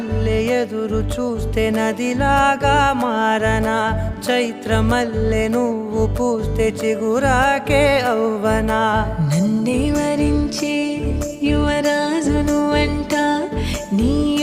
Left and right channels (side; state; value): both; identical; correlation 1.00